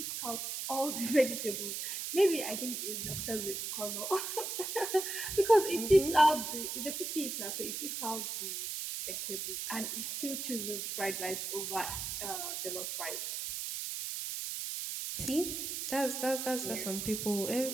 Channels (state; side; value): noise; right; hiss, 4 dB below the sound